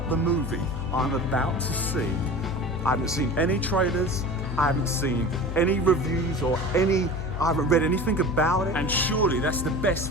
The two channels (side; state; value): left; noise; hum, 6 dB below the sound